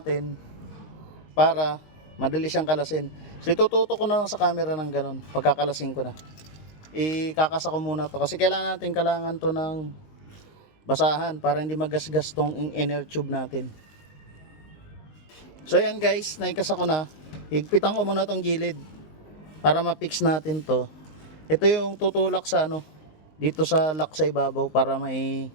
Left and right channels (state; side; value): late; right; 19 ms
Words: para madali siyang kalasin. So itututok ko na lang sa camera ng ganun. Pagkakalasin ko na, ikakasa ko muna to kasi kailangan to ng basahan para hindi magasgas tong inner tube natin. So yan guys, naikasa ko na. Higpitan ko muna tong gilid para ma-fix natin to. Ito yung tutulak sa dito sa lock sa ibabaw para may